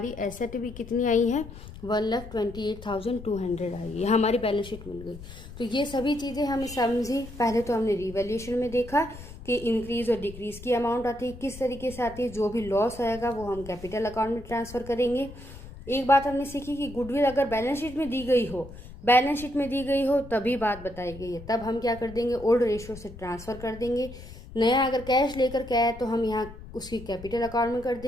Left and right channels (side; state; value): left; noise; rumble, 15 dB below the sound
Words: एसेट भी कितनी आई है, 1,28,200 आई है, हमारी बैलेंस शीट मिल गई। तो ये सभी चीज़ें हमें समझी। पहले तो हमने रिवैल्यूएशन में देखा कि इंक्रीज और डिक्रीज की अमाउंट आती है, किस तरीके से आती है, जो भी लॉस आएगा वो हम कैपिटल अकाउंट में ट्रांसफ़र करेंगे। एक बात हमने सीखी कि गुडविल अगर बैलेंस शीट में दी गई हो तभी बात बताई गई है, तब हम क्या कर देंगे, ओल्ड रेशियो से ट्रांसफ़र कर देंगे। नया अगर कैश लेकर के आए तो हम यहाँ उसकी कैपिटल अकाउंट में कर